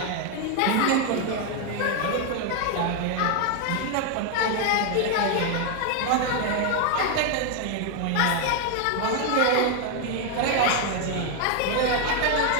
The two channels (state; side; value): different; both; correlation 0.01